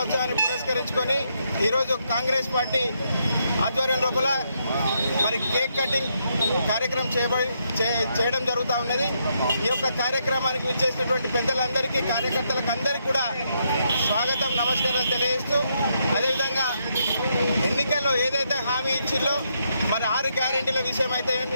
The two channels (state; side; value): inverted; both; correlation -0.77